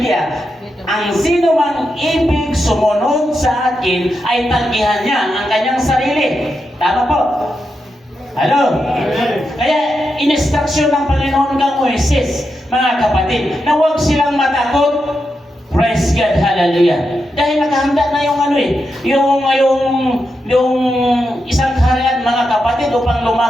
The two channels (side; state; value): both; normal; correlation 0.86